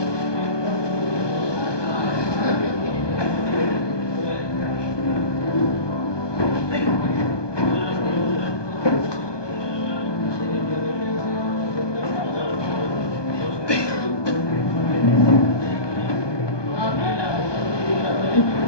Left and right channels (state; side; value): late; right; 1.2 ms